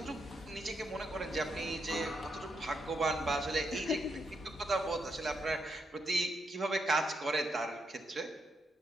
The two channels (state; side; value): normal; both; correlation 0.80